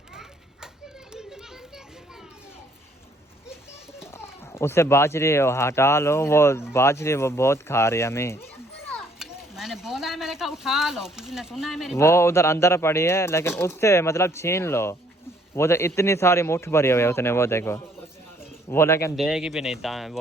उससे बाजरी हटा लो, वो बाजरी वो बहुत खा रही है हमें। मैंने बोला है, मैंने कहा उठा लो, किसी ने सुना है मेरी वो उधर अंदर पड़ी है, लेकिन उससे मतलब छीन लो। वो तो इतनी सारी मुट्ठ भरी हुई है उसने, वो देखो वो, लेकिन देगी भी नहीं,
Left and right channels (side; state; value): both; normal; correlation 0.64